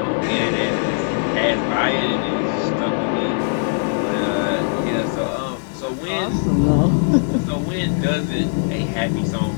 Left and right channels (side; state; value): right; silent; 60 dB below the other